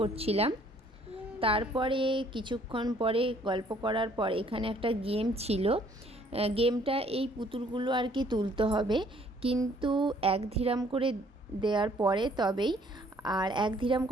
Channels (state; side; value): normal; both; correlation 0.61